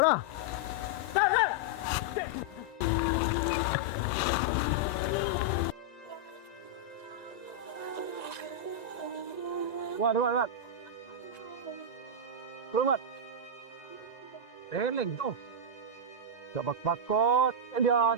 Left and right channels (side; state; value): right; late; 1.9 ms